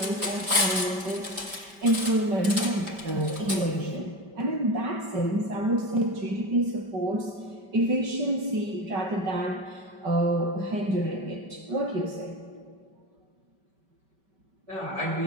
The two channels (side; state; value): left; late; 5.2 ms